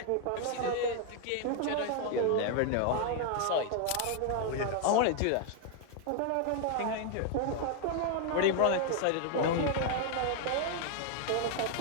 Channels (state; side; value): different; both; correlation 0.00